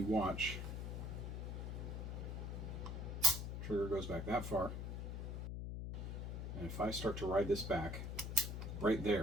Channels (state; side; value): noise; left; hum, 4 dB below the sound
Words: watch, trigger goes back that far, and if I start to ride this back, right